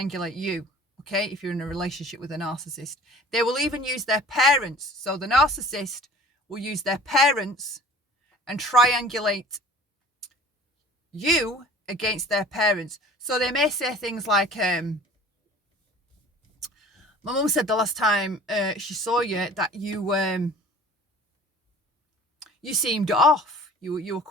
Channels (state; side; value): normal; both; correlation 0.46